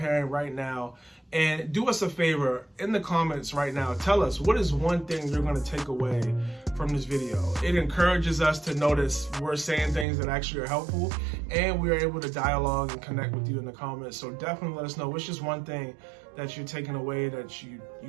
right now. And do us a favor, in the comments right now, tell us, what is one thing you're going to take away from this video? It encourages us to notice we're saying things that actually are helpful, and we're able to dialogue and connect with you in the comments. So definitely let us know what's just one thing that you're taking away that you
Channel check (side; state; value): left; drops out; at 10.1 s